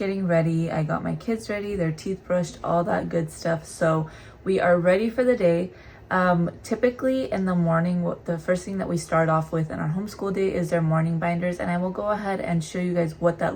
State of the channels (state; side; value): identical; both; correlation 1.00